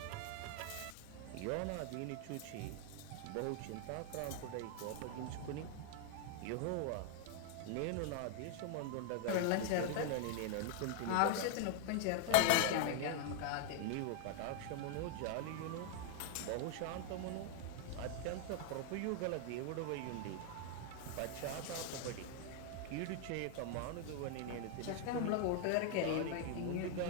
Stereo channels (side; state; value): both; different; correlation 0.00